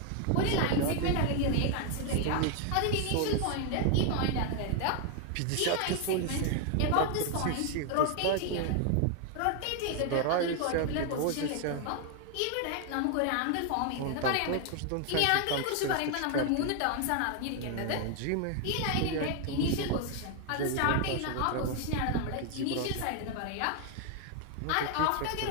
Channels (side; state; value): both; different; correlation 0.01